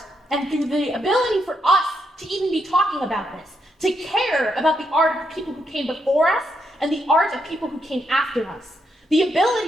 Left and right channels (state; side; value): normal; both; correlation 0.79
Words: and through the ability for us to even be talking about this, to care about the art of people who came before us and the art of people who came after us. The